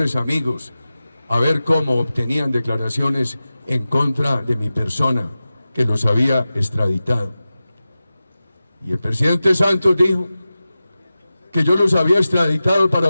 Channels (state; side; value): inverted; both; correlation -0.95